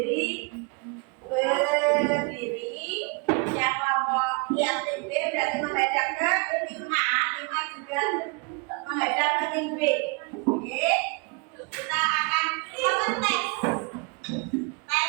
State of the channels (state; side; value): quieter; left; 32.6 dB